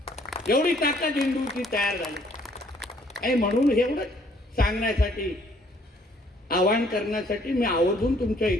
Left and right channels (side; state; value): both; normal; correlation 0.62